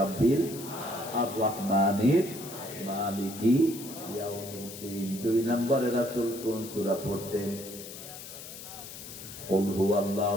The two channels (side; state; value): left; noise; hiss, 12 dB below the sound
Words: আর-রহমানির মালিকি ইয়াউমিদ্দিন। 2 নম্বরে রাসূল কোন সূরা পড়তেন? কুল